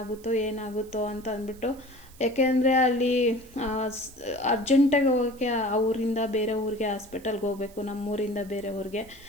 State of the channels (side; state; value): right; noise; hiss, 24 dB below the sound